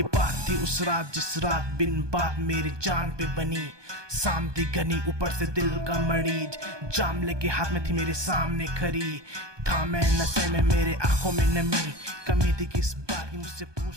बात थी उस रात जिस रात बिन बात मेरी जान पे बनी। शाम थी घनी, ऊपर से दिल का मरीज, जाम लेके हाथ में थी मेरे सामने खड़ी। था मैं नशे में, मेरे आंखों में नमी, कमी थी किस बात की मुझसे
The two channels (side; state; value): left; late; 1.2 ms